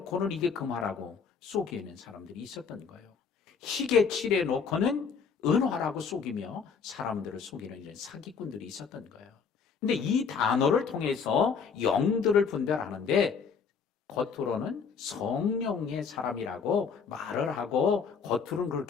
이게 금화라고 속이는 사람들이 있었던 거예요. 희게 칠해놓고는 은화라고 속이며 사람들을 속이는 이런 사기꾼들이 있었던 거예요. 근데 이 단어를 통해서 영들을 분별하는데 겉으로는 성령의 사람이라고 말을 하고 겉으로는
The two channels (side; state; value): right; quieter; 6.0 dB